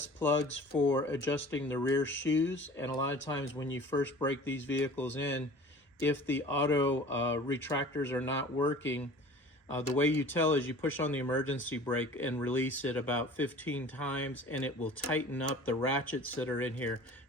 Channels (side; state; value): both; normal; correlation 0.43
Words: plugs for adjusting the rear shoes, and a lot of times when you first break these vehicles in, if the auto retractors are not working, the way you tell is you push on the emergency brake and release it about 15 times, and it will tighten up the ratchets that are in here